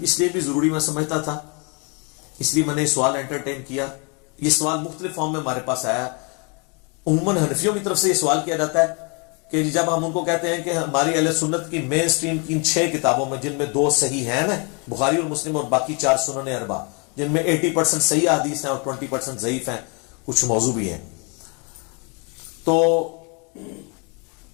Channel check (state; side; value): quieter; right; 33.8 dB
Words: اس لیے بھی ضروری میں سمجھتا تھا، اس لیے میں نے سوال انٹرٹین کیا. یہ سوال مختلف فارم میں ہمارے پاس آیا. عموماً حنفیوں کی طرف سے یہ سوال کیا جاتا ہے کہ جب ہم ان کو کہتے ہیں کہ ہماری اہل سنت کی مین سٹریم کی ان 6 کتابوں میں، جن میں 2 صحیح ہیں نا، بخاری اور مسلم، اور باقی 4 سنن اربع، جن میں 80% صحیح حدیث ہیں اور 20% ضعیف ہیں، کچھ موضوع بھی ہیں، تو